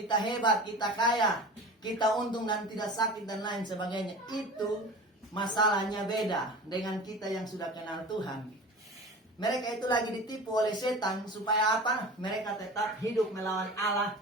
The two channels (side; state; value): both; normal; correlation 0.36